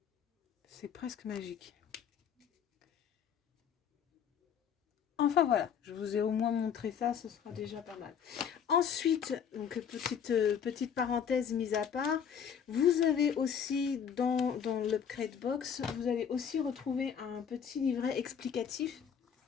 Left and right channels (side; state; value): right; quieter; 7.7 dB